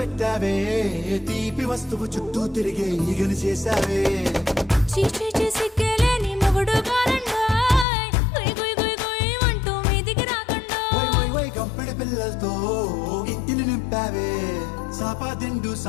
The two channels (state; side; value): drops out; right; at 7.9 s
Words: పెట్టావే తీపి వస్తువు చుట్టూ తిరిగే ఈగను చేసావే చీచి చేసి కేలేని మొగుడు గారండాయ్ గుయ్ గుయ్ గుయ్ గుయ్ అంటూ మీదికి రాకుండా వై కంపెడి పిల్లలతో ఇంటిని నింపావే సాపా దిండు